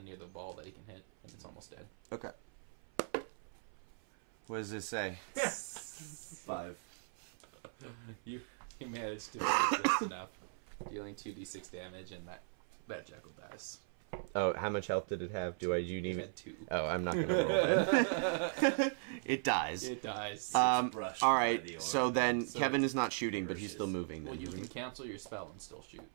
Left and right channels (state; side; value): silent; left; 52 dB below the other